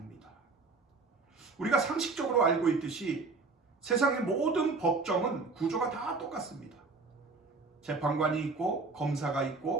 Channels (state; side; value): quieter; left; 4.0 dB